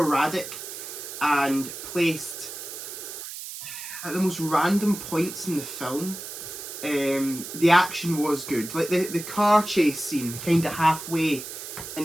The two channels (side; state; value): right; noise; hiss, 10 dB below the sound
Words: and placed at the most random points in the film. The action was good. Like the car chase scene kind of halfway